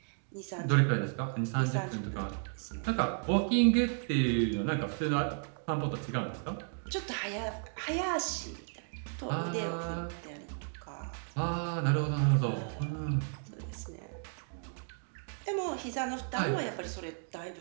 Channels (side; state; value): left; silent; 55 dB below the other